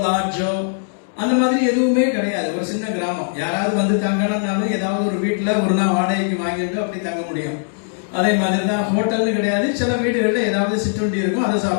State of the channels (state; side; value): silent; right; digital silence